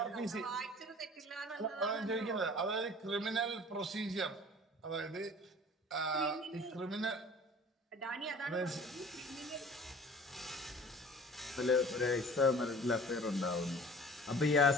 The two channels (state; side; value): normal; both; correlation 0.46